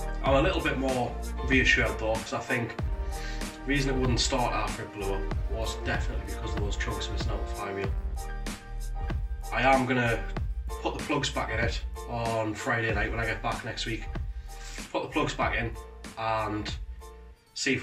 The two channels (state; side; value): identical; both; correlation 1.00